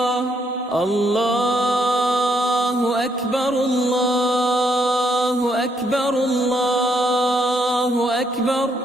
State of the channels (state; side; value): normal; both; correlation 0.73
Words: الله أكبر الله أكبر الله أكبر.